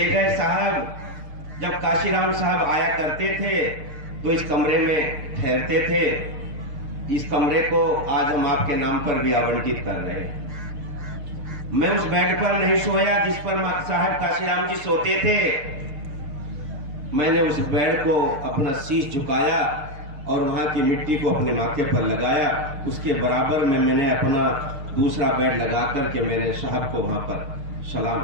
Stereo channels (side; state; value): left; late; 6.7 ms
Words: गए साहब। जब काशीराम साहब आया करते थे तो इस कमरे में ठहरते थे। इस कमरे को आज हम आपके नाम पर भी आवंटित कर रहे हैं। मैं उस बेड पर नहीं सोया जिस पर साहब काशीराम जी सोते थे। मैंने उस बेड को अपना शीश झुकाया और वहां की मिट्टी को अपने माथे पर लगाया। उसके बराबर में मैंने अपना दूसरा बेड लगा करके मैंने साहब को वहां पर सलाम